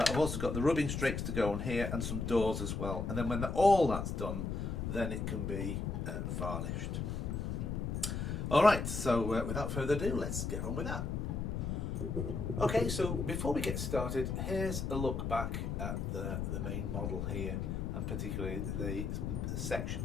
also got the rubbing strakes to go on here and some doors as well. And then when all that's done, then it can be varnished. Alright, so without further ado, let's get on with that. Okay, so before we get started, here's a look back at the main model here, and particularly the section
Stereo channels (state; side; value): noise; left; rumble, 2 dB below the sound